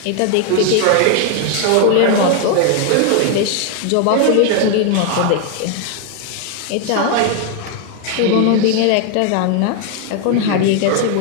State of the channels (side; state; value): both; different; correlation 0.01